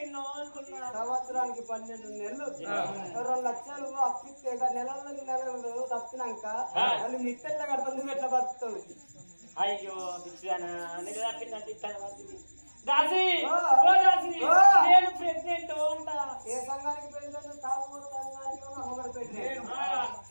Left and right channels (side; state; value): both; inverted; correlation -1.00